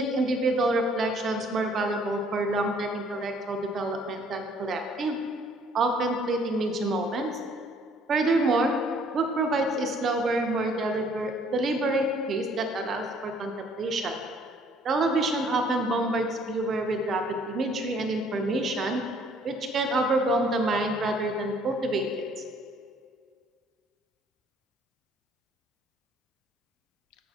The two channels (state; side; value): normal; both; correlation 0.60